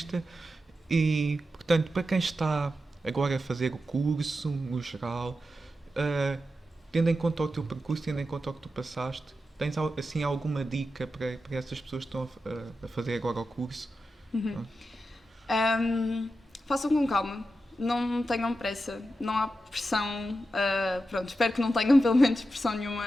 E, portanto, para quem está agora a fazer o curso, no geral, tendo em conta o teu percurso, tendo em conta o que tu passaste, tens assim alguma dica para essas pessoas que estão a fazer agora o curso? Façam com calma, não tenham pressa, não há pressão, pronto, espero que não tenham pelo menos pressão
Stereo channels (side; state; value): both; normal; correlation 0.90